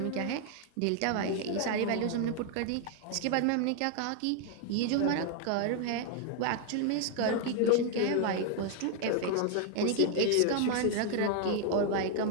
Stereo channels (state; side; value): different; both; correlation 0.00